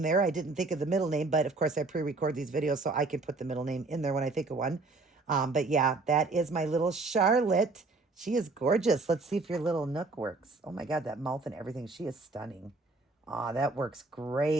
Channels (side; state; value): left; quieter; 3.5 dB